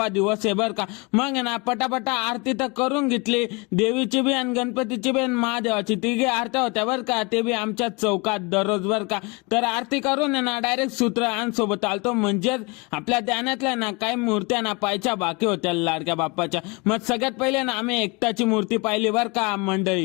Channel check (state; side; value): quieter; right; 28.2 dB